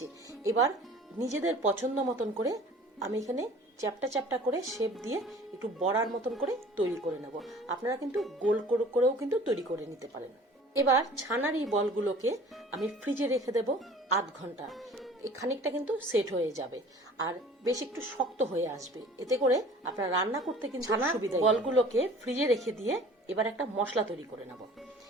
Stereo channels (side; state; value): both; normal; correlation 0.47